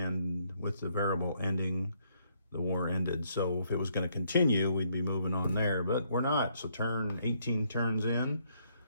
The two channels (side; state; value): both; inverted; correlation -0.71